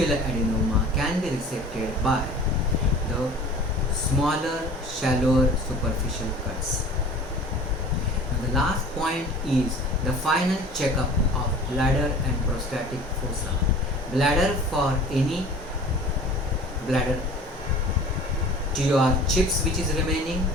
adenoma can be resected by the smaller, shallower superficial cuts. Now the last point is the final checkup of bladder and prostatic fossa. Bladder for any bladder TUR chips which is remaining,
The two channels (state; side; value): normal; both; correlation 0.43